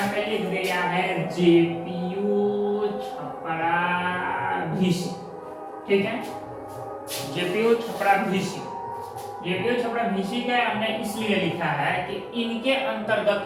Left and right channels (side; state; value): both; identical; correlation 1.00